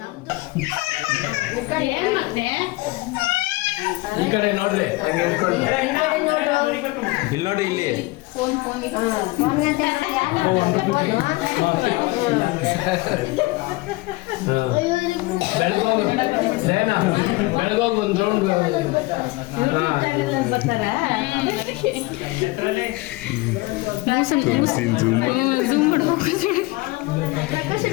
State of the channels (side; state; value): right; quieter; 22.1 dB